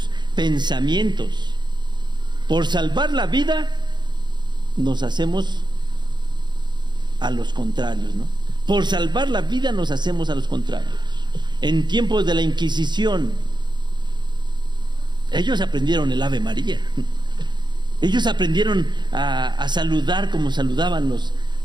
pensamientos. Por salvar la vida nos hacemos a los contrarios, ¿no? Por salvar la vida nos hacemos a los contrarios. En tiempos de la Inquisición, ellos aprendieron el Ave María. Ellos aprendieron a saludar como saludaban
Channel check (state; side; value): late; left; 0.21 ms